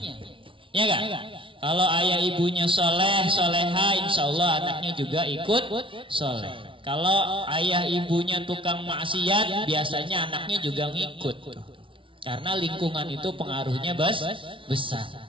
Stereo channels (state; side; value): late; left; 0.25 ms